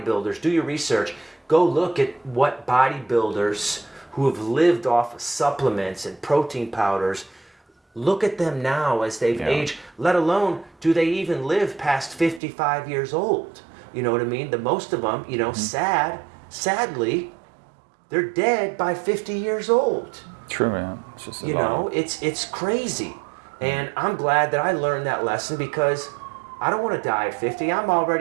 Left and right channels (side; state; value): left; drops out; at 12.4 s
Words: do your research, go look at what bodybuilders who have lived off of supplements and protein powders, look at them now as they've aged, let alone do they even live past 55 years old. You know what I mean? The most of them, you know, sadly, they're dead by 50 years old. True, man. It's just you know, it's crazy. And I'm glad that I learned that lesson because I don't want to die at 50. I'm